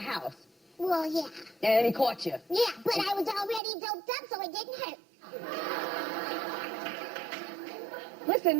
well, yeah. And he caught you. Yeah, but I was already doped up, so it didn't hurt.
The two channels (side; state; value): left; drops out; at 3.6 s